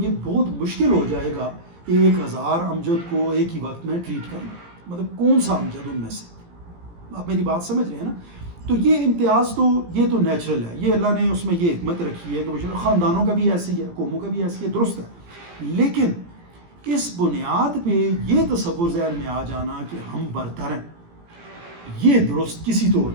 بہت مشکل ہو جائے گا 1000 امجد کو ایک ہی وقت میں ٹریٹ کرنا. مطلب کون سا امجد ان میں سے، آپ میری بات سمجھ رہے ہیں نا. تو یہ امتیاز تو یہ تو نیچرل ہے، یہ اللہ نے اس میں یہ حکمت رکھی ہے کہ خاندانوں کا بھی ایسی ہے، قوموں کا بھی ایسی ہے، درست ہے. لیکن اس بنیاد پہ یہ تصور ذہن میں آ جانا کہ ہم برتر ہیں، یہ درست کسی طور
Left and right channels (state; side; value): late; left; 17 ms